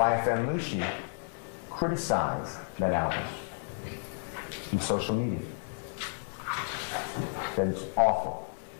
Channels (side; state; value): right; silent; digital silence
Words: Lucy criticized that album on social media. That it's awful.